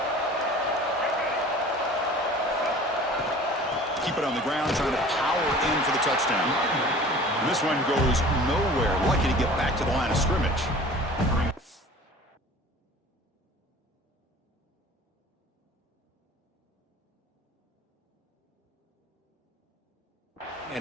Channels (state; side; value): normal; both; correlation 0.44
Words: Keep it on the ground, trying to power in for the touchdown. And this one goes nowhere. Lucky to get back to the line of scrimmage.